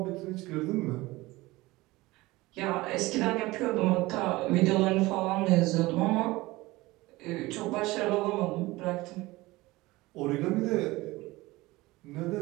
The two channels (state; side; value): quieter; left; 20.2 dB